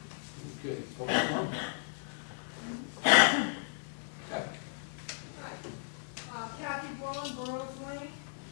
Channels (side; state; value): right; silent; digital silence